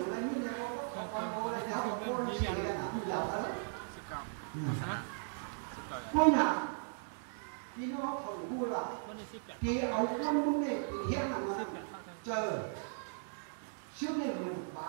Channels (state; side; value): silent; left; digital silence